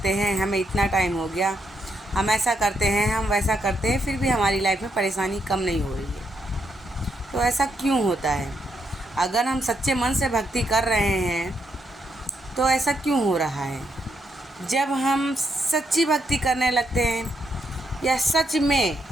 हैं, हमें इतना टाइम हो गया, हम ऐसा करते हैं, हम वैसा करते हैं, फिर भी हमारी लाइफ में परेशानी कम नहीं हो रही है। तो ऐसा क्यों होता है? अगर हम सच्चे मन से भक्ति कर रहे हैं तो ऐसा क्यों हो रहा है? जब हम सच्ची भक्ति करने लगते हैं या सच में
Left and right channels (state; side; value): normal; both; correlation 0.79